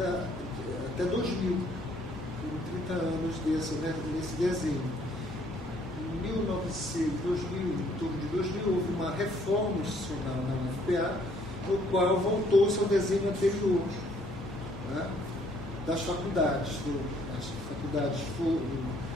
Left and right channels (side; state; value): both; normal; correlation 0.64